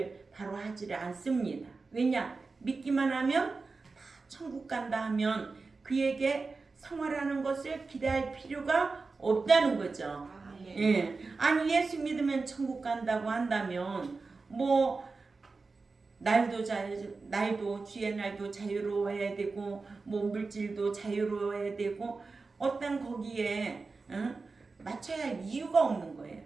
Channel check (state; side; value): quieter; left; 4.1 dB